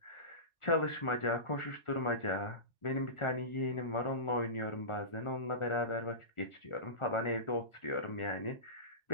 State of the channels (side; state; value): right; late; 1.4 ms